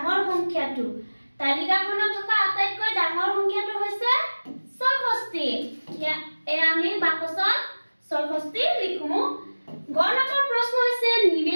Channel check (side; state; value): both; inverted; correlation -1.00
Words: সংখ্যাটো। তালিকাখনত থকা আটাইতকৈ ডাঙৰ সংখ্যাটো হৈছে 64। এয়া আমি বাকচত 64 লিখো। গ নম্বৰ প্ৰশ্ন হৈছে